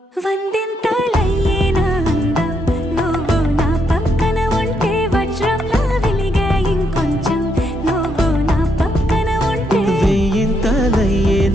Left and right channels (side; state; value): both; normal; correlation 0.76